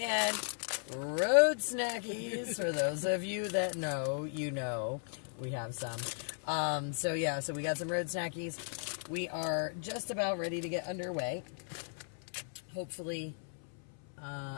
road snackies. For those of you that know, you know, we have some. So yeah, so we got some road snackies. We are just about ready to get underway. Hopefully...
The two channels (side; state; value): right; silent; 54 dB below the other